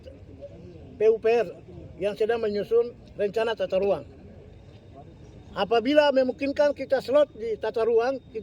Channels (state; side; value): identical; both; correlation 1.00